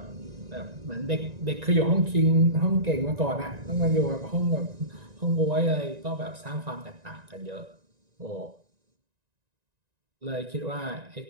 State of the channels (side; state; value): left; late; 1.9 ms